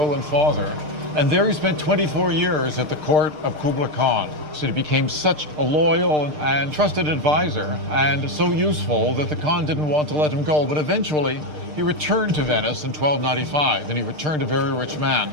and father, and there he spent 24 years at the court of Kublai Khan. So he became such a loyal and trusted advisor, and so useful that the Khan didn't want to let him go. But eventually, he returned to Venice in 1295, and he returned a very rich man,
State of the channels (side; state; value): left; late; 6.6 ms